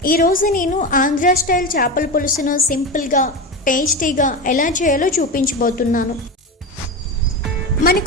ఈరోజు నేను ఆంధ్ర స్టైల్ చేపల పులుసును సింపుల్గా టేస్టీగా ఎలా చేయాలో చూపించబోతున్నాను.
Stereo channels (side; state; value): both; normal; correlation 0.21